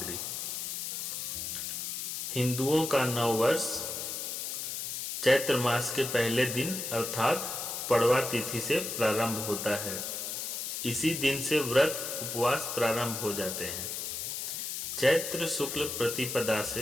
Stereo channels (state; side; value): noise; left; hiss, 4 dB below the sound